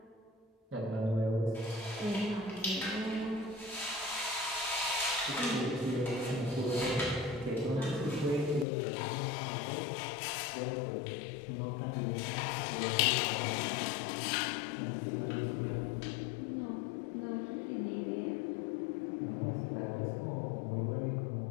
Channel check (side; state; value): right; drops out; at 8.7 s